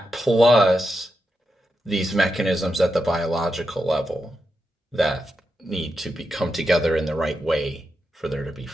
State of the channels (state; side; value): normal; both; correlation 0.87